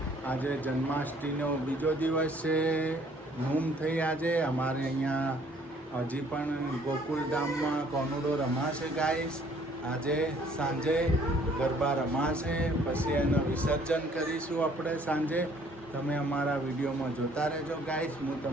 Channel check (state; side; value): normal; both; correlation 0.60